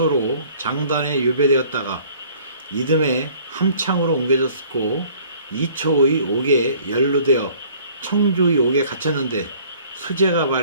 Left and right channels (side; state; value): both; inverted; correlation -0.54